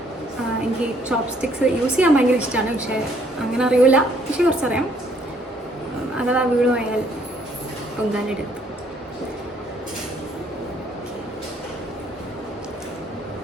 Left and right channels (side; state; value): both; normal; correlation 0.65